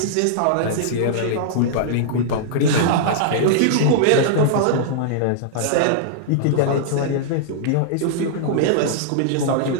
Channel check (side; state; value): both; different; correlation -0.01